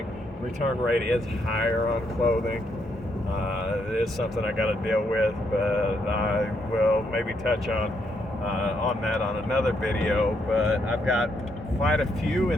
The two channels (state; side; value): normal; both; correlation 0.76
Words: Return rate is higher on clothing. It is something I got to deal with, but I will maybe touch on that on another video. But I've got quite a few